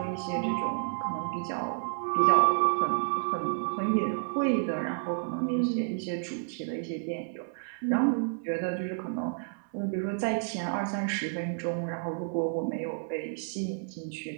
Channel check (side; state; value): left; silent; 58 dB below the other